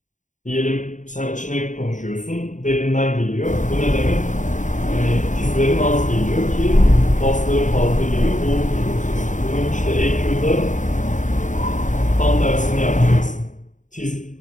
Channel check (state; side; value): late; right; 0.36 ms